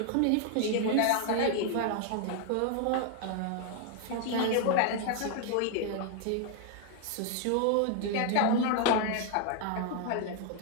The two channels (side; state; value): both; different; correlation 0.00